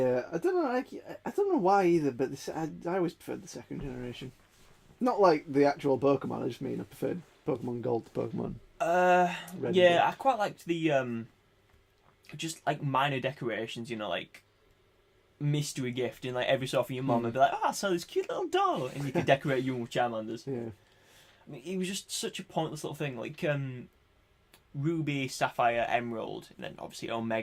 I don't know. I don't know why either, but I always preferred the second generation. Not like the actual Pokemon. I just mean I preferred Pokemon Gold to Pokemon Red. Yeah, I quite liked the just like minor decorations, you know, like mystery gift, and like every so often your mum would be like, "Oh, I saw this cute little doll," and you could decorate you with Charmanders. Yeah. I mean, it was just such a pointless little thing, like Ruby, Sapphire, Emerald, and then obviously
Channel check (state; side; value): identical; both; correlation 1.00